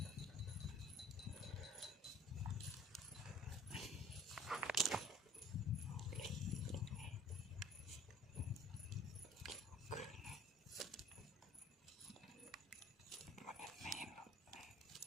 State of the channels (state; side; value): normal; both; correlation 0.50